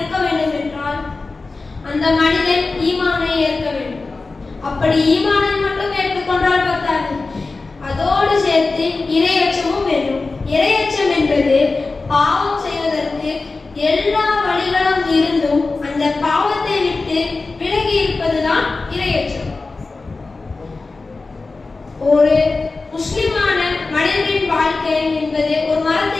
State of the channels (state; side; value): quieter; right; 3.7 dB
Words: வேண்டும் என்றால் அந்த மனிதன் ஈமானை ஏற்க வேண்டும். அப்படி ஈமானை மட்டும் ஏற்றுக்கொண்டால் பத்தாது, அதோடு சேர்த்து இறையச்சமும் வேண்டும். இறையச்சம் என்பது பாவம் செய்வதற்கு எல்லா வழிகளும் இருந்தும் அந்த பாவத்தை விட்டு விலகி இருப்பதுதான் இறையச்சம். ஒரு முஸ்லிமான மனிதனின் வாழ்க்கை என்பது ஒரு